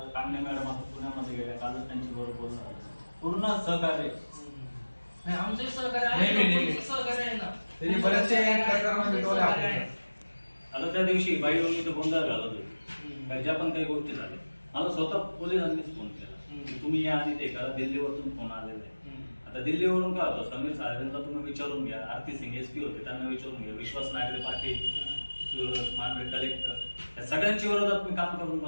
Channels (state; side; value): inverted; both; correlation -1.00